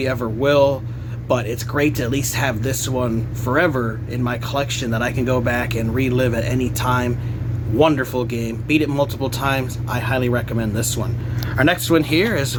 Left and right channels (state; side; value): identical; both; correlation 1.00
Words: ever will. But it's great to at least have this one forever in my collection that I can go back and relive at any time. Wonderful game. Beat it multiple times. I highly recommend this one. Our next one here is